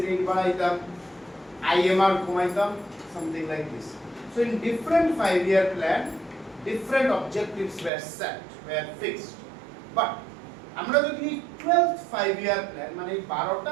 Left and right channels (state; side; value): drops out; left; at 7.9 s